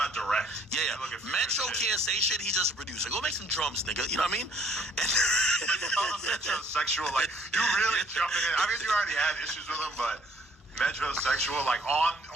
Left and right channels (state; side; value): normal; both; correlation 0.61